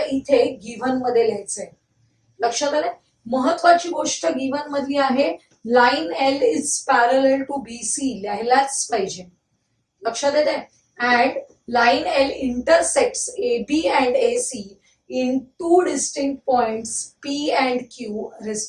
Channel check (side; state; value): both; identical; correlation 1.00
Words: इथे given मध्ये लिहायचंय. लक्षात आलंय? महत्वाची गोष्ट given मधली आहे. Line L is parallel to BC लिहायलाच पाहिजे. लक्षात येते? And line L intersects A B and A C in 2 distinct points P and Q